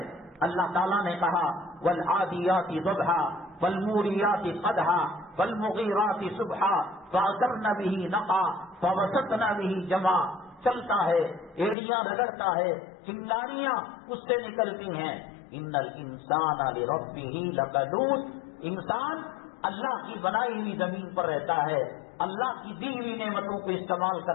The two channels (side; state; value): right; drops out; at 11.8 s